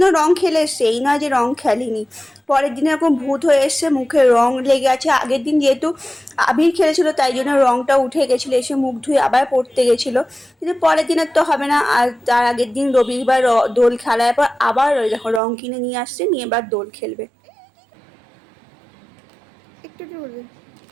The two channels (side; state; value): left; drops out; at 15.4 s